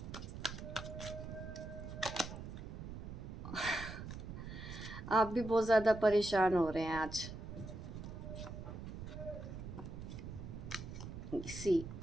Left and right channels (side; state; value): right; noise; rumble, 8 dB below the sound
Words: आप भी बहुत ज़्यादा परेशान हो रहे हैं आज। सी